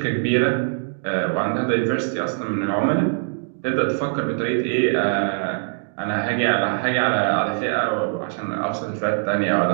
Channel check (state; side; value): silent; left; digital silence